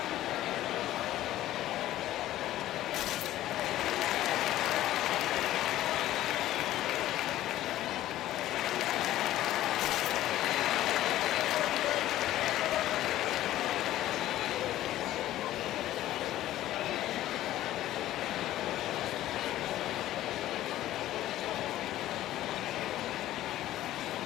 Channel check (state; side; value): quieter; right; 14.1 dB